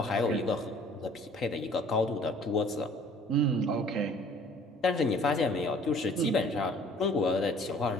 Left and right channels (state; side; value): normal; both; correlation 0.53